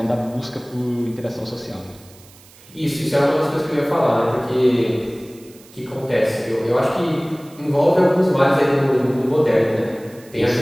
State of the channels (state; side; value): noise; right; hiss, 24 dB below the sound